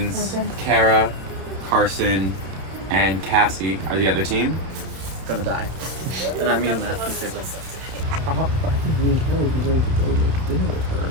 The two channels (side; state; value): left; late; 31 ms